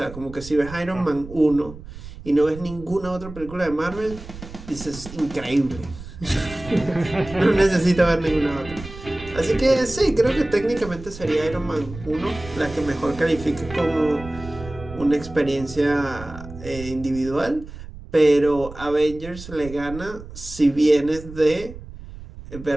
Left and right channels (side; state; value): right; noise; rumble, 14 dB below the sound